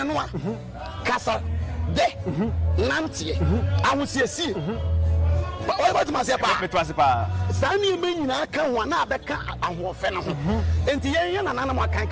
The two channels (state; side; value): identical; both; correlation 1.00